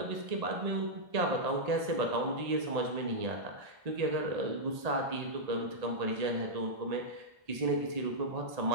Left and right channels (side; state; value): left; late; 1.8 ms